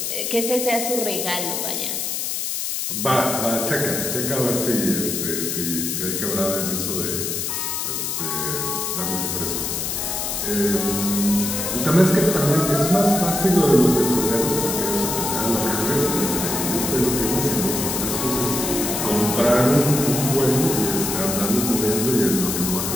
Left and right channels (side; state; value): left; noise; hiss, 2 dB below the sound